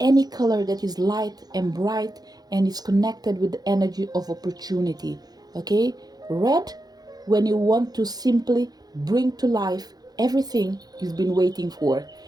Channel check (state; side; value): late; left; 0.19 ms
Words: color that is light and bright and is connected with the energy of opportunity, okay? Red, when you want to simply bring to life everything you've been waiting for.